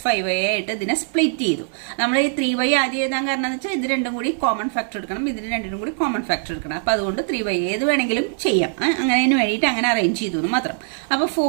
ആയിട്ട് ഇതിനെ സ്പ്ലിറ്റ് ചെയ്തു. നമ്മൾ ഈ 3y ആദ്യം എഴുതാൻ കാരണം എന്ന് വെച്ചാൽ ഇത് രണ്ടും കൂടി കോമൺ ഫാക്ടർ എടുക്കണം, ഇതിന് രണ്ടിനും കൂടി കോമൺ ഫാക്ടർ എടുക്കണം. അപ്പൊ അതുകൊണ്ട് 3y ഏത് വേണമെങ്കിലും ചെയ്യാം. അങ്ങനെ വേണ്ടിയിട്ട് അങ്ങനെ അറേഞ്ച് ചെയ്തു എന്ന് മാത്രം. അപ്പൊ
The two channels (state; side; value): silent; left; digital silence